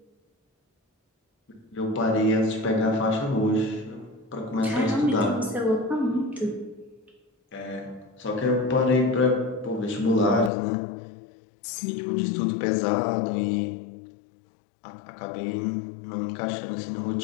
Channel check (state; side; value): drops out; right; at 10.5 s